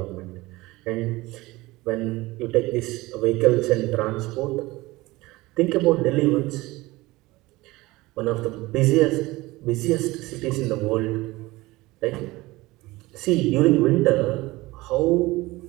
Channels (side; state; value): left; quieter; 20.3 dB